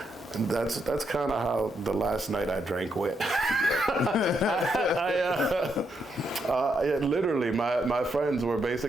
that's kind of how the last night I drank went. Literally, my friends were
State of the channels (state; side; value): normal; both; correlation 0.79